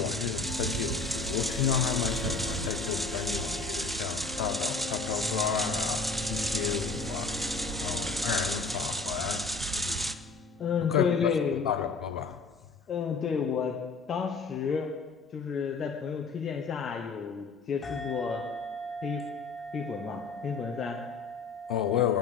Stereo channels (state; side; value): quieter; right; 4.1 dB